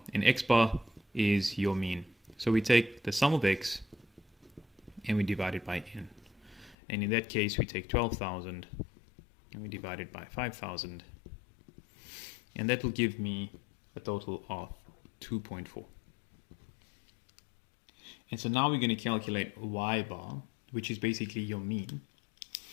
And x bar is your mean. So we take the sum of x and we divide it by n. And in that case, we take 12,000 and we divide it by 5,000. And that will give me a total of 2.4. And so now we're going to calculate y bar, which is basically your mean.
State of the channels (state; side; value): drops out; right; at 6.8 s